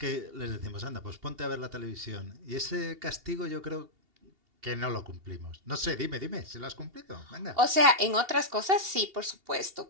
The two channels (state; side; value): late; left; 2.8 ms